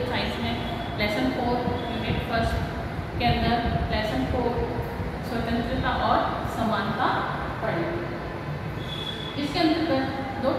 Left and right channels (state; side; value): identical; both; correlation 1.00